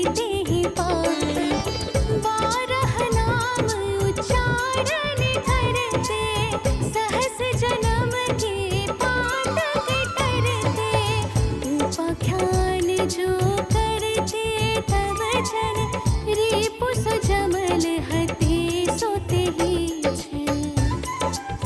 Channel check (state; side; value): identical; both; correlation 1.00